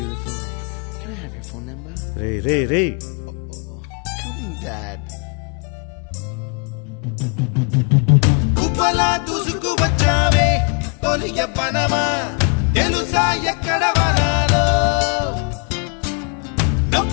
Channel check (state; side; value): quieter; right; 37.6 dB